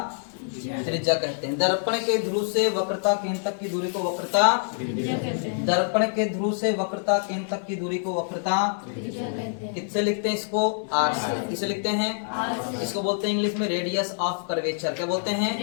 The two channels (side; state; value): right; silent; digital silence